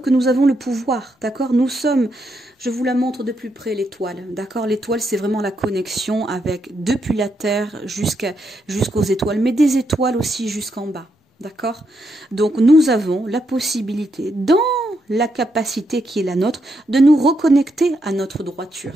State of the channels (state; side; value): normal; both; correlation 0.80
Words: nous avons le pouvoir, d'accord? Nous sommes, je vous la montre de plus près, l'étoile, d'accord? L'étoile, c'est vraiment la connexion avec, depuis la Terre jusqu'aux étoiles, mais des étoiles aussi jusqu'en bas. D'accord? Donc nous avons la possibilité, dans la capacité qui est la nôtre, de nous reconnecter à notre droiture.